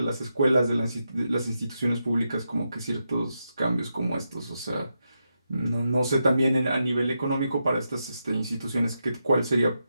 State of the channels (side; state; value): both; inverted; correlation -0.85